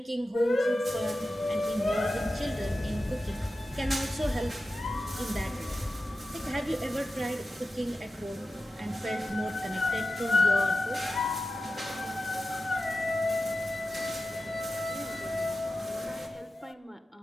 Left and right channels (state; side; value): normal; both; correlation 0.93